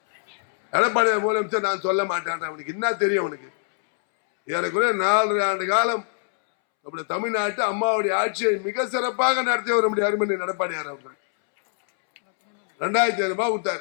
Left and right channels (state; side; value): silent; right; 63 dB below the other